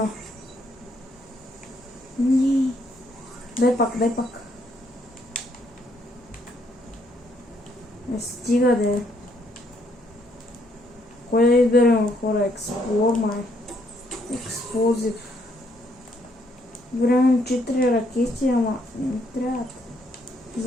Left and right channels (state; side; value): normal; both; correlation 0.71